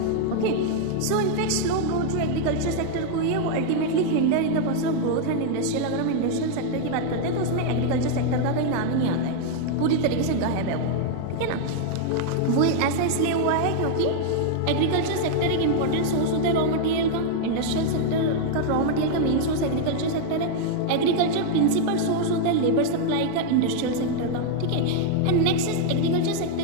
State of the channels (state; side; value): different; both; correlation 0.00